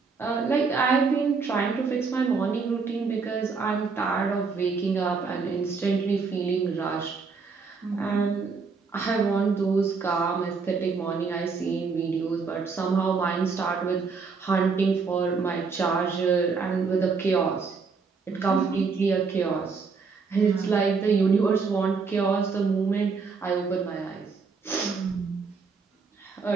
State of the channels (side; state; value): left; quieter; 5.0 dB